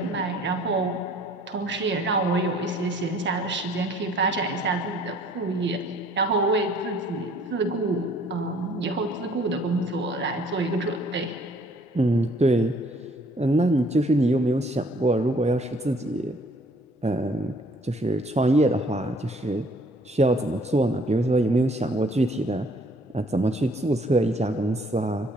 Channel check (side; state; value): both; normal; correlation 0.59